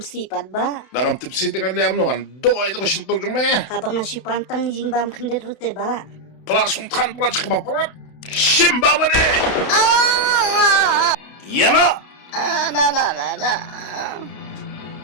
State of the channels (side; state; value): right; late; 32 ms